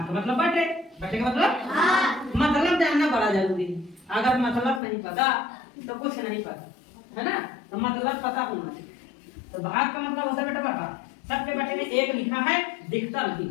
का मतलब बटे, बटे का मतलब मतलब जानना बड़ा जरूरी है। अगर मतलब नहीं पता तो कुछ नहीं पता, है ना। तो मतलब पता होना चाहिए। तो भाग का मतलब होता है बेटा बटा, सबके बटे में एक लिखा है दिखता नहीं,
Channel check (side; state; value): right; drops out; at 4.8 s